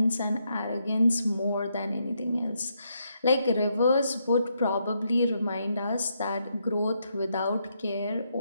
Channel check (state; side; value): inverted; both; correlation -0.79